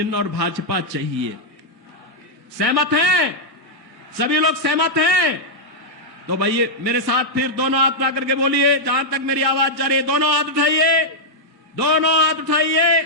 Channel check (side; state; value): both; normal; correlation -0.05